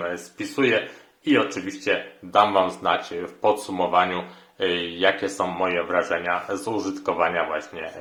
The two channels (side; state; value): both; identical; correlation 1.00